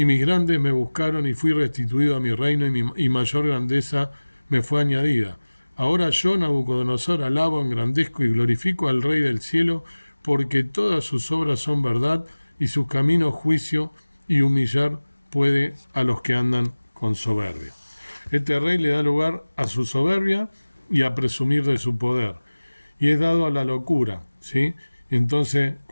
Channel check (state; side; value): inverted; both; correlation -1.00